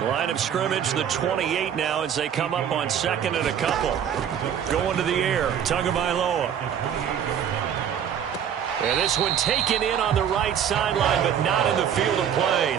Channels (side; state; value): left; quieter; 8.8 dB